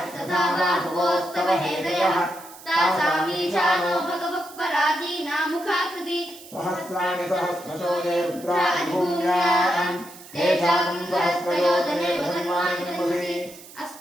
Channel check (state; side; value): noise; right; hiss, 19 dB below the sound